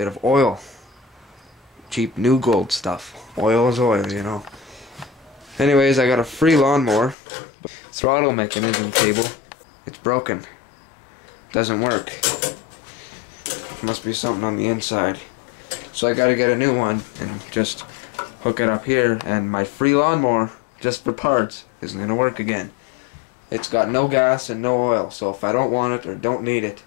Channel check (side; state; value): right; drops out; at 7.2 s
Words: of oil. Cheap New Gold stuff. Oil is oil, you know. Anyways, I got a free lawnmower. Throttle mechanism cable. It's broken. Doesn't work. Must be something on the inside. So I gotta get a new one and just hook it up here, and my free lawnmower, just for parts, isn't gonna work again. It's got no gas and no oil, so if I don't want it or don't need it,